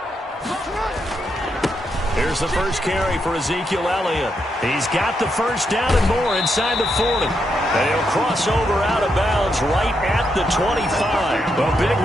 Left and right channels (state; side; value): normal; both; correlation 0.81